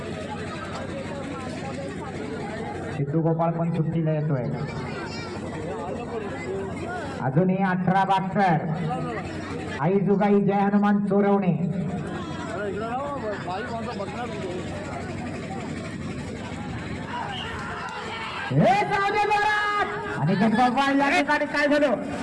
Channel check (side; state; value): left; noise; hum, 29 dB below the sound